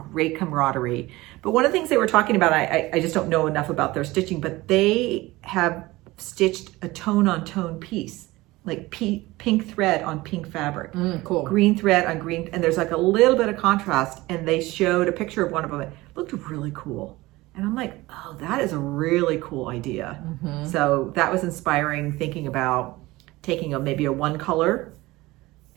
camaraderie. But one of the things they were talking about, I just don't know enough about their stitching, but they have stitched a tone-on-tone piece, like pink thread on pink fabric, Cool. green thread on green, and there's like a little bit of contrast, and they showed a picture of one of them. It looked really cool. And I'm like, oh, that is a really cool idea. So that was inspiring, thinking about taking maybe a 1-color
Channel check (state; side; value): quieter; left; 19.8 dB